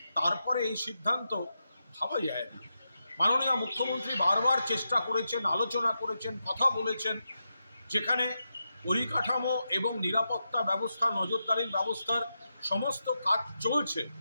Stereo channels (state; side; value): inverted; both; correlation -0.87